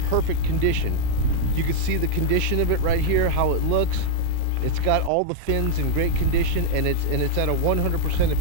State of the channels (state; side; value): different; both; correlation -0.01